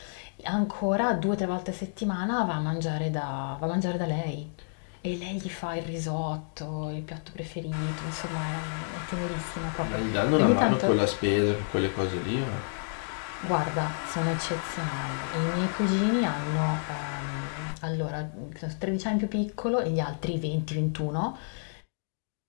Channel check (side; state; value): right; silent; digital silence